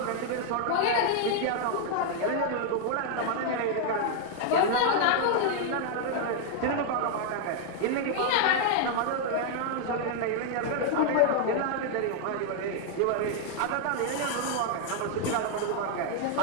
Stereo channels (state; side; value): different; both; correlation 0.00